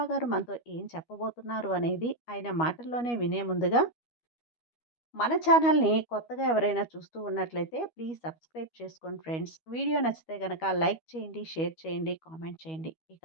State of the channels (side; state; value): right; late; 12 ms